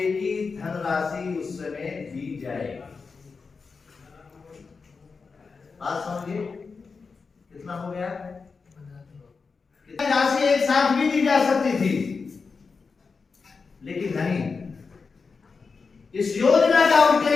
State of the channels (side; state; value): right; quieter; 4.8 dB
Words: की धनराशि उस समय दी जाएगी। बात समझिए कितना हो गया, कितनी राशि एक साथ भी दी जा सकती थी, लेकिन नहीं, इस योजना का